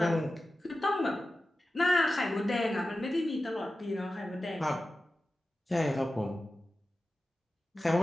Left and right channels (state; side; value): normal; both; correlation 0.94